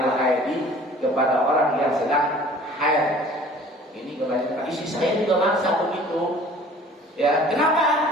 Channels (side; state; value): both; normal; correlation 0.49